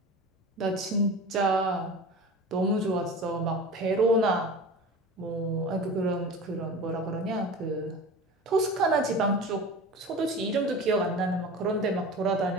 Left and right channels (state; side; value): normal; both; correlation 0.34